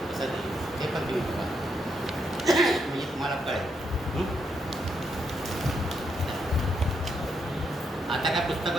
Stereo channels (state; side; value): normal; both; correlation 0.79